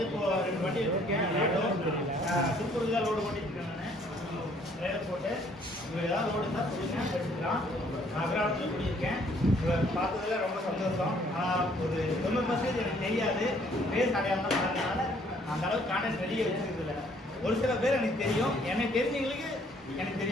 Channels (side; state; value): both; normal; correlation 0.62